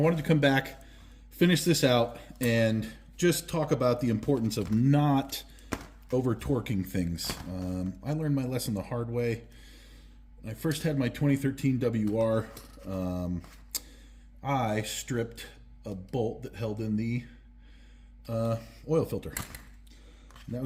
to come back, finish this out, and just talk about the importance of not over torquing things. I learned my lesson the hard way. When I first had my 2013 WR, I stripped a bolt that held in the oil filter. And that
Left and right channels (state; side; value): identical; both; correlation 1.00